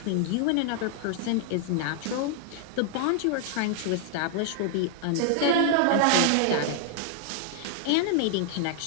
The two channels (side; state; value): both; different; correlation 0.00